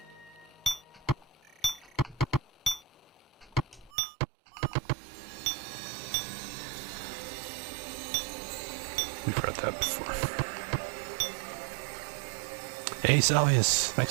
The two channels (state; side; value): drops out; left; at 3.9 s